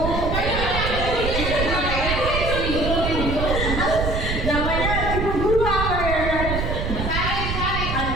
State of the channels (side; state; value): right; noise; rumble, 2 dB below the sound